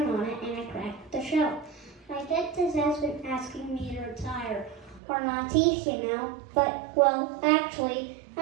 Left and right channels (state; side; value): drops out; left; at 5.0 s